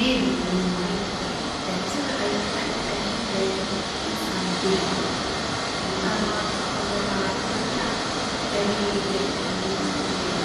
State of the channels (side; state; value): both; identical; correlation 1.00